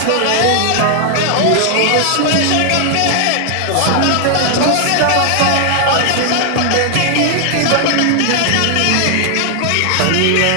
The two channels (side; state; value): both; different; correlation 0.00